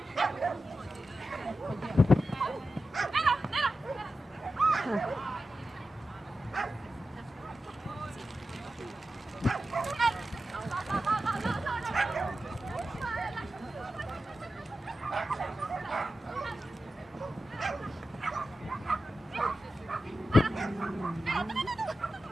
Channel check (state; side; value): normal; both; correlation 0.92